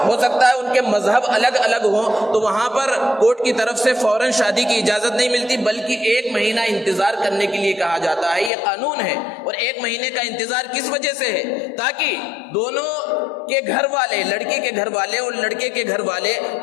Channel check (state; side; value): drops out; right; at 8.5 s